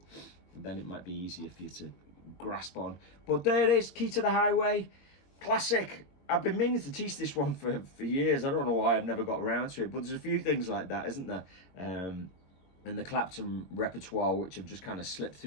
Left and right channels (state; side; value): late; right; 21 ms